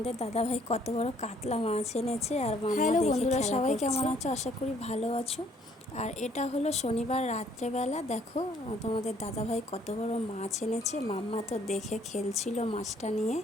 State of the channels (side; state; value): both; normal; correlation 0.63